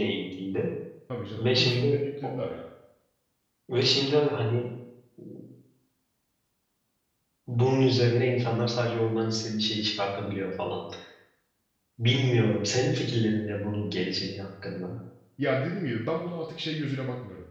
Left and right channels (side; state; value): both; identical; correlation 1.00